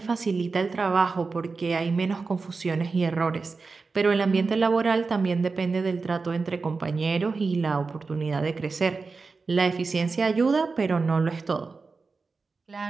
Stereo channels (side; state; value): left; quieter; 4.3 dB